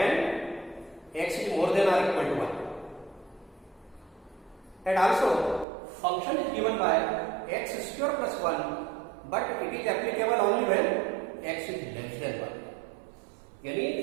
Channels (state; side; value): drops out; left; at 5.7 s